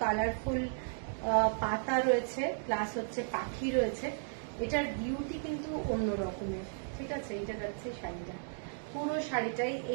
কালারফুল পাতা রয়েছে, প্লাস হচ্ছে পাখি রয়েছে। এটার বিউটি কিন্তু অন্য রকমের, ঠিক আছে। এইটা যাচ্ছে শাড়িটা, পুরো শাড়িটাই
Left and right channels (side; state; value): left; silent; digital silence